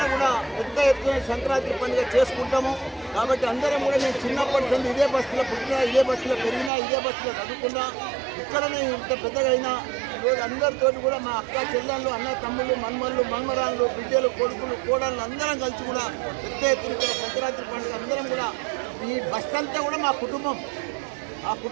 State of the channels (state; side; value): drops out; left; at 6.7 s